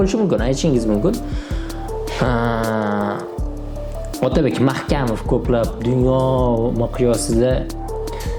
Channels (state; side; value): identical; both; correlation 1.00